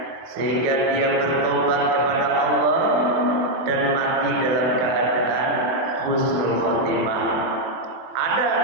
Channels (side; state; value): left; late; 24 ms